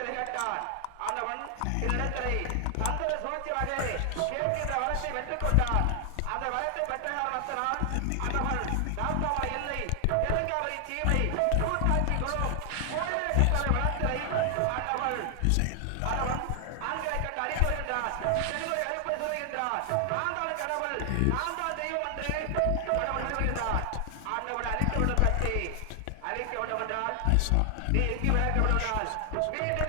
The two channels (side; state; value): both; different; correlation 0.00